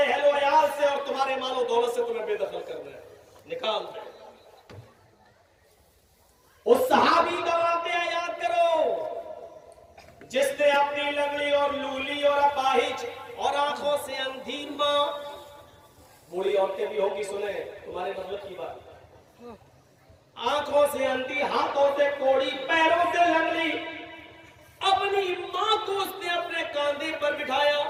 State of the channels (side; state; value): both; identical; correlation 1.00